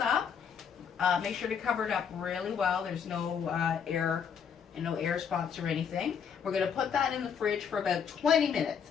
Make sure to cover it up really well. There's no air and no air spots or anything. We're going to put that in the fridge for about 20 minutes.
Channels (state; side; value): quieter; right; 7.2 dB